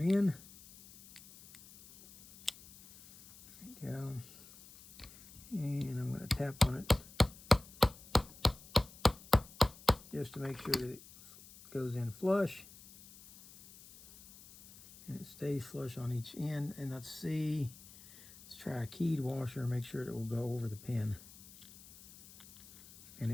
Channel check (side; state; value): left; noise; hiss, 20 dB below the sound